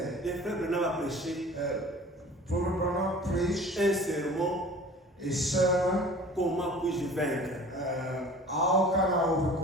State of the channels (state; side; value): normal; both; correlation 0.45